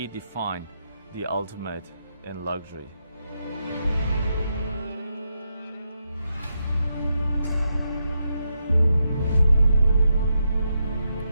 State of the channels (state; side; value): inverted; both; correlation -0.83